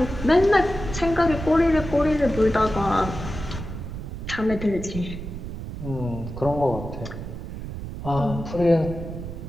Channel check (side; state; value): right; noise; rumble, 8 dB below the sound